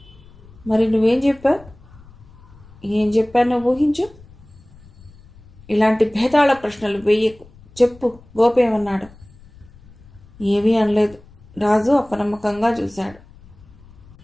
మరి నువ్వేం చెప్పావు? ఏం చెప్పానో ఊహించు. ఇలాంటి భేదాళ ప్రశ్నలు వెయ్యకు. చెప్పు, గోపి ఏమన్నాడు? ఏమీ అనలేదు. రాజు అపనమ్మకంగా చూశాడు.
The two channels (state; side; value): noise; left; rumble, 23 dB below the sound